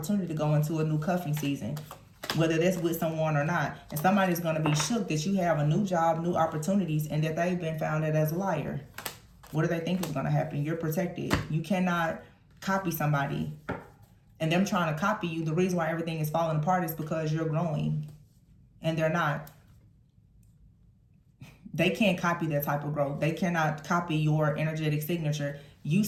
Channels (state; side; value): identical; both; correlation 1.00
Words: to go into a new cuffing season, whether that's with someone or not. And somebody's going to be shook that you have a new job, new opportunities, and that they've been found as a liar. What do they think is going to happen? You're protected. You cannot copy somebody. And them trying to copy you, the reason why everything is falling apart is because you're growing. And they're not. They can't copy that type of growth. They cannot copy your energetic signature. You